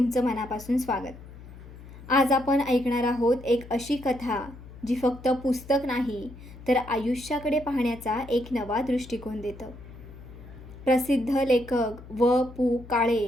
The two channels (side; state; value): left; noise; hum, 17 dB below the sound